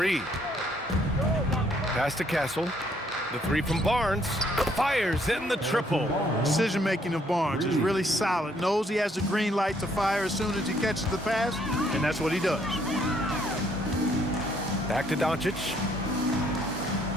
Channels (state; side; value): normal; both; correlation 0.67